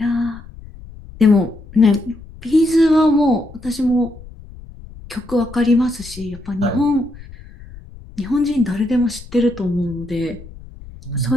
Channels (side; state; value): left; noise; rumble, 18 dB below the sound